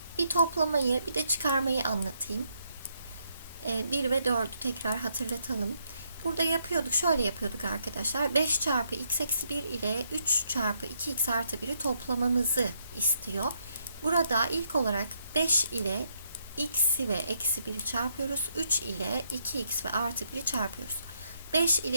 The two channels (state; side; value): inverted; both; correlation -0.75